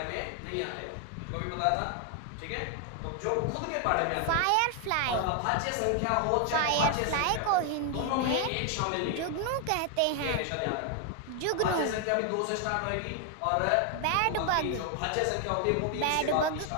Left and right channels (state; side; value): different; both; correlation 0.00